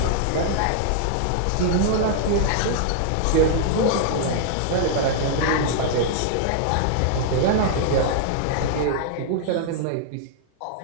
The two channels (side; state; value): both; different; correlation -0.01